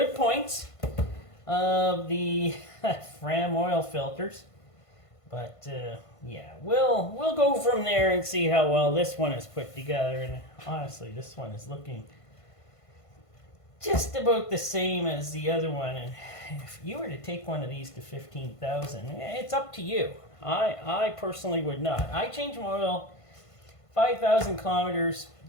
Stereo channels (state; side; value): late; right; 1.5 ms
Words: points of the Fram oil filters. But yeah, we'll go from there and see how well this one is put together. And honestly, this one is looking just about the same as the other one. And if you were to take one of these to 15,000, it's up to you. I personally would not. I change my oil 5,000 kilometers.